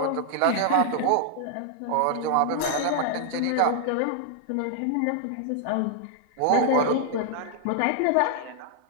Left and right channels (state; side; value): different; both; correlation 0.00